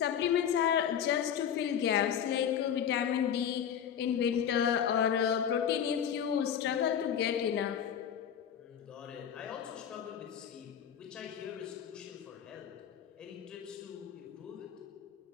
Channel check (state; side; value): quieter; right; 8.8 dB